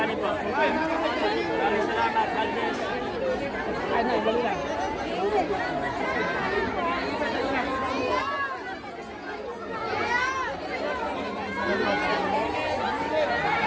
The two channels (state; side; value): identical; both; correlation 1.00